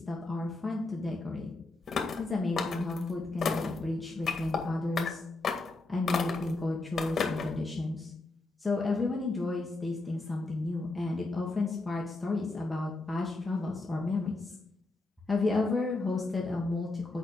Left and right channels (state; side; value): quieter; right; 3.1 dB